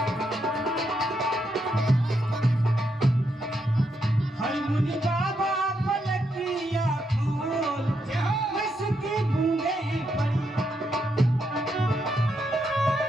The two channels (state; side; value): normal; both; correlation 0.80